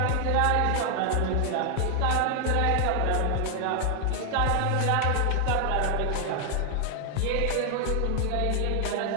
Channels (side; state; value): both; different; correlation 0.00